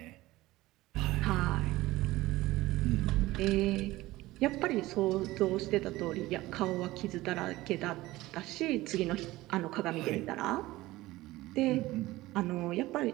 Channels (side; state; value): left; quieter; 18.1 dB